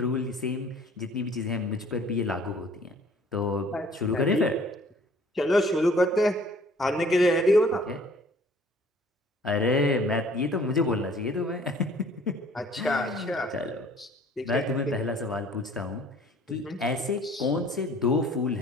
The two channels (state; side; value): normal; both; correlation 0.54